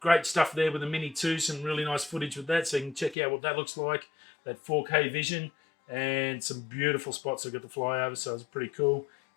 stuff there with the Mini 2, some really nice footage with that, so you can check out what that looks like, that 4K vision. And some beautiful spots I got to fly over, so it's pretty cool.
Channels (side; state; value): right; drops out; at 3.2 s